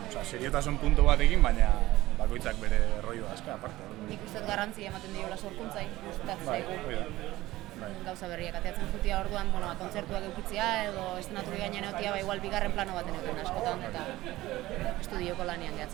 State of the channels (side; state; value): left; quieter; 17.2 dB